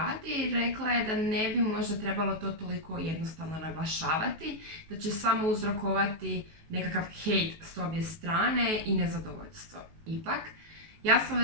rekla je da ne bi možda trebalo to toliko jednostavno naglašavati, da će samo uzrokovati nekakav hejt s obje strane i nezadovoljstvo. Ipak, ja sam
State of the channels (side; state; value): left; late; 19 ms